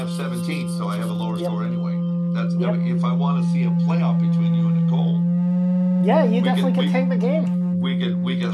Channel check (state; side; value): identical; both; correlation 1.00